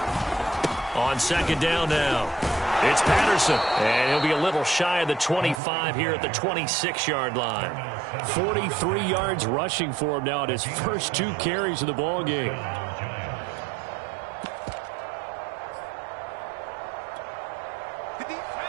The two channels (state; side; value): drops out; left; at 5.6 s